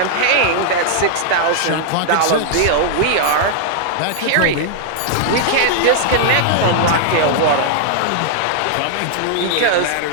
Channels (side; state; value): both; different; correlation -0.01